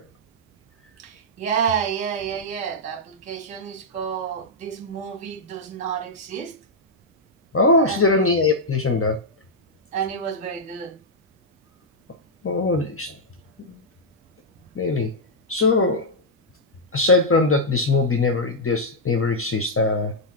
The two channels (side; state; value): both; normal; correlation -0.05